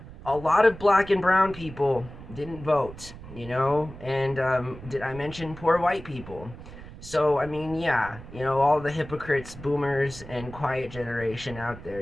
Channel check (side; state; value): right; noise; rumble, 15 dB below the sound